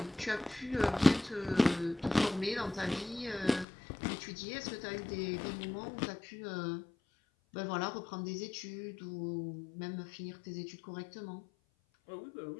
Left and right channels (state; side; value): drops out; right; at 3.7 s